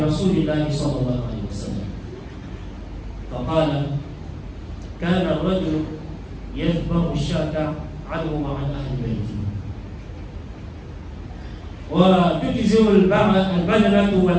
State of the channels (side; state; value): both; identical; correlation 1.00